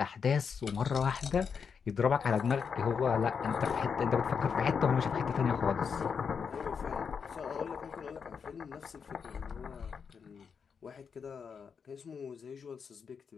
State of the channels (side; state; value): right; quieter; 6.3 dB